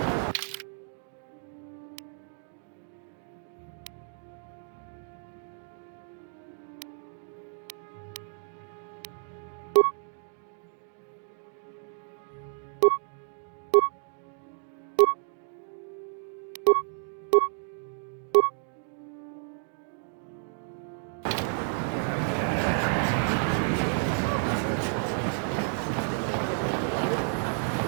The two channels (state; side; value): silent; left; 56 dB below the other